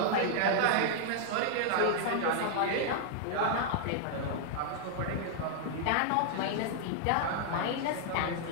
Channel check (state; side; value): different; both; correlation -0.01